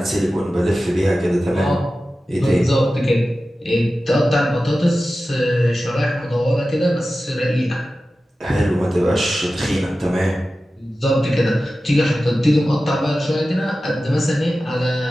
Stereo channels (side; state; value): both; normal; correlation 0.94